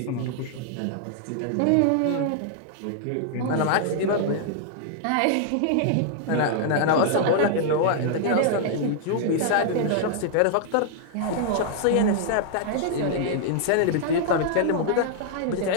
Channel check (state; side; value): different; both; correlation -0.01